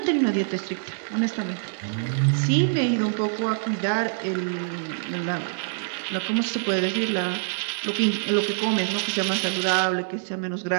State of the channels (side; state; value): left; silent; digital silence